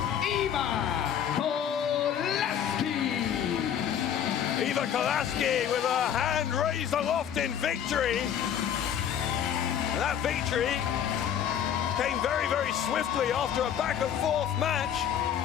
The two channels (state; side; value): quieter; right; 9.2 dB